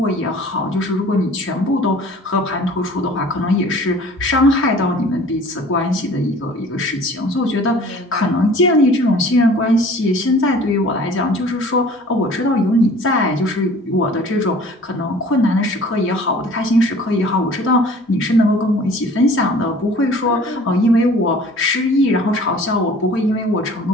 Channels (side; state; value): both; normal; correlation 0.48